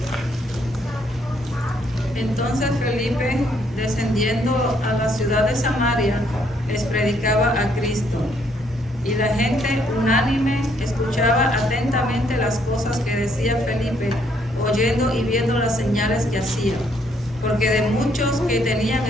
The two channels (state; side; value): normal; both; correlation 0.69